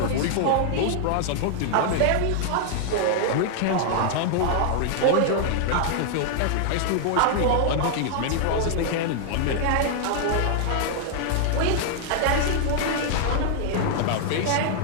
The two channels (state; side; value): different; both; correlation 0.00